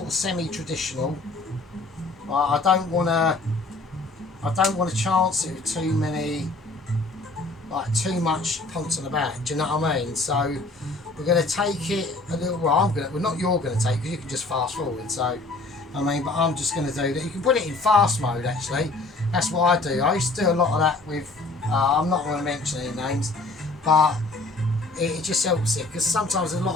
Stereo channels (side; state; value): right; quieter; 3.2 dB